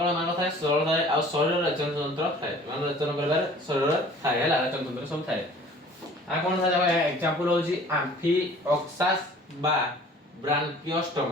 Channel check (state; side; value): normal; both; correlation 0.49